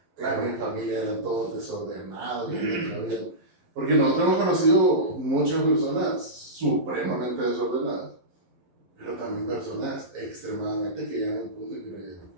claro, mi familia eran todos desordenados. Porque nosotros hemos conocido muchas personas supremamente desordenadas, pero también personas extremadamente que llegan a un punto y que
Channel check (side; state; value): left; late; 11 ms